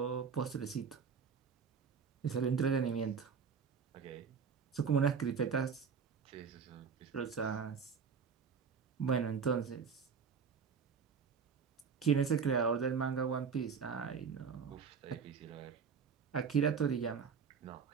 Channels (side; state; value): left; quieter; 6.2 dB